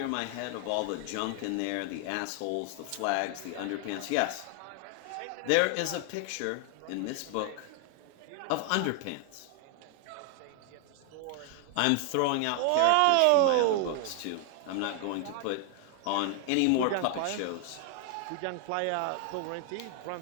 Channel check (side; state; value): both; different; correlation 0.00